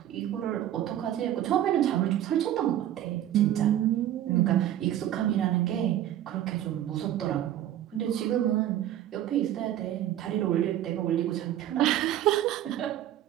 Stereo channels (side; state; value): left; quieter; 12.1 dB